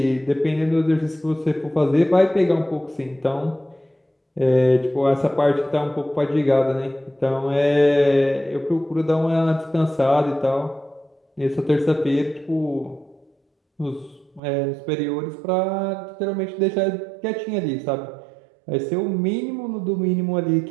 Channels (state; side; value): drops out; left; at 14.4 s